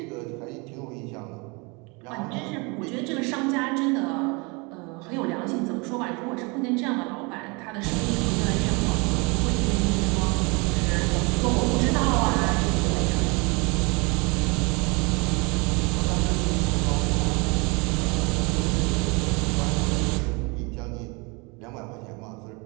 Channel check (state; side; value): quieter; left; 29.0 dB